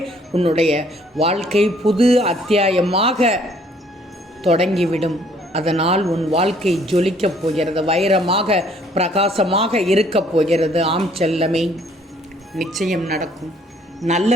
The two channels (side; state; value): both; normal; correlation 0.62